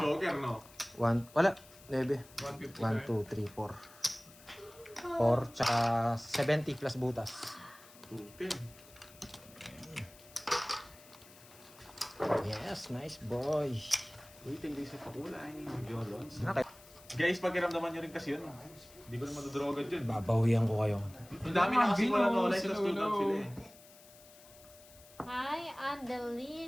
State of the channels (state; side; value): noise; left; hiss, 22 dB below the sound